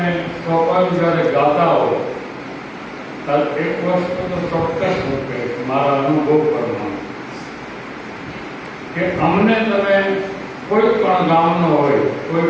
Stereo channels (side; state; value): both; identical; correlation 1.00